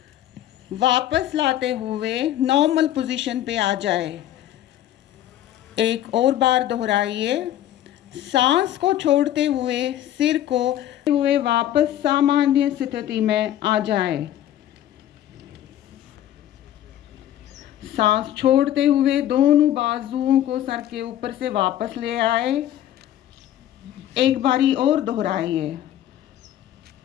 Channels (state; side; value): quieter; right; 12.2 dB